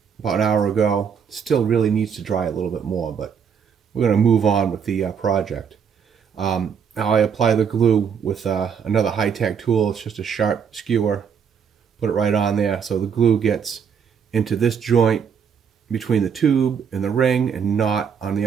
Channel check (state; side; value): quieter; left; 7.0 dB